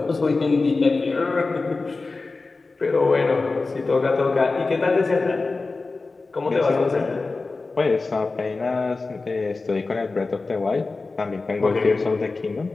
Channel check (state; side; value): quieter; right; 3.7 dB